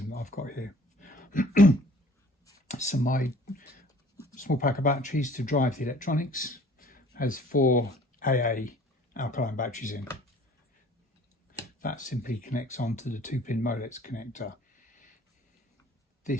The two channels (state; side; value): normal; both; correlation 0.52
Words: that I've got here. So my small pack of batteries to drive the electronics has 4 AA alkaline batteries in. That simply connects onto the 2-pin Molex connector.